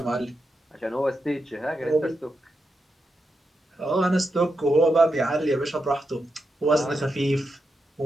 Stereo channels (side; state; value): both; normal; correlation 0.86